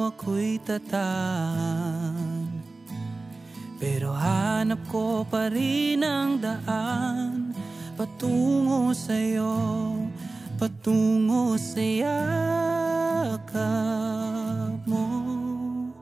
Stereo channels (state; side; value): quieter; left; 3.4 dB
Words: ako'y tataan, pero hanap ko pa rin ang daan patungo sa'yo, patungo sa yakap mo.